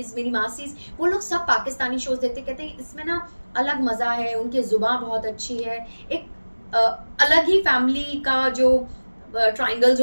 मेरी मासीज, वो लोग सब पाकिस्तानी शोज देखते, कहते हैं इसमें ना अलग मजा है, उनकी जुबान बहुत अच्छी है, एक अलग ही फैमिली का जो ट्रायंगल्स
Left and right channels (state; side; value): inverted; both; correlation -1.00